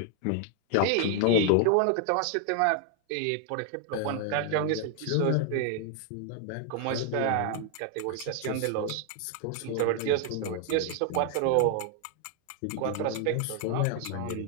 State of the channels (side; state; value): both; different; correlation 0.00